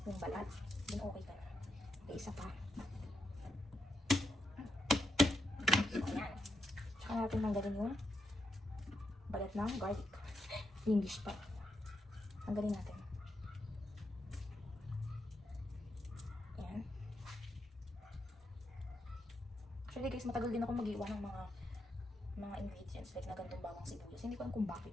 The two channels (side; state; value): both; normal; correlation 0.82